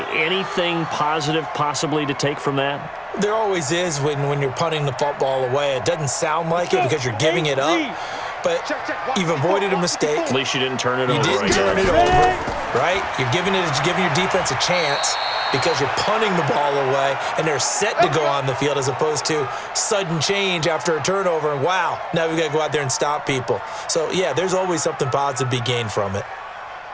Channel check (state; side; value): identical; both; correlation 1.00